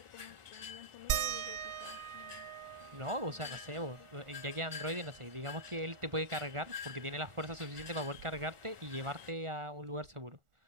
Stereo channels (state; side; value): late; left; 1.4 ms